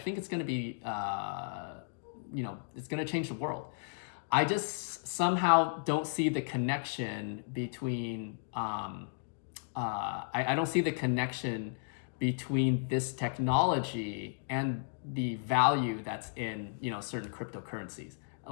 it's going to be, it's going to change the world. I just somehow don't see the connection between, I don't see the connection between this technology and the value that's in, certain cryptocurrencies.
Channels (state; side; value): silent; right; digital silence